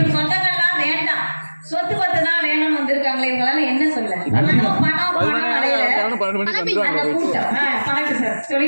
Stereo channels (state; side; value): inverted; both; correlation -1.00